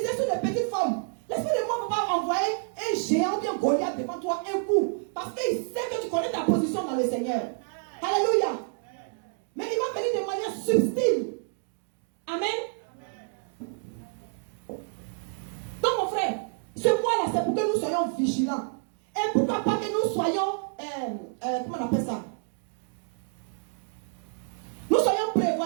sur des petites formes. L'esprit de moi ne va pas envoyer un géant bien Goliath devant toi un coup. Parce qu'il sait que tu connais ta position dans le Seigneur. Alléluia. Mais il va venir de manière subtile. Amen. Donc mon frère, ce mois-là, c'est pour que nous soyons vigilants. Et pourquoi pas que nous soyons, comment on appelle ça? Nous soyons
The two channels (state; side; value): silent; left; 59 dB below the other